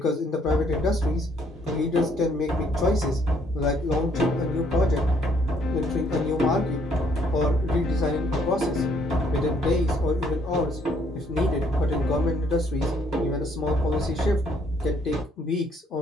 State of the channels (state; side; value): normal; both; correlation 0.66